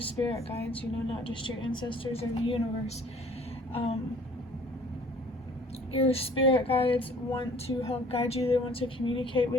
spirit guides, not just your ancestors or the universe. Your spirit guides want to help guide you. They want to communicate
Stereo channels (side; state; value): both; normal; correlation 0.53